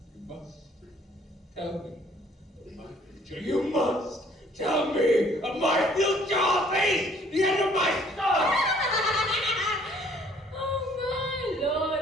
You must tell me future. You must tell me of my future or face the end of my son! Oh my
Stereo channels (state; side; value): normal; both; correlation 0.59